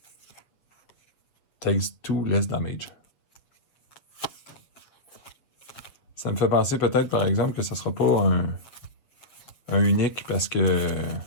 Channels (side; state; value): right; late; 7.6 ms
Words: Takes 2 less damage. Ça me fait penser peut-être, par exemple, que ça sera pas un unique parce que...